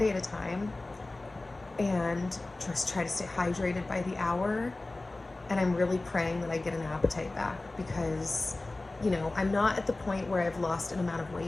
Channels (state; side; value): quieter; right; 3.0 dB